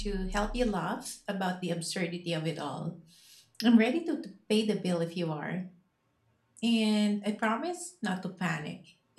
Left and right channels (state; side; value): identical; both; correlation 1.00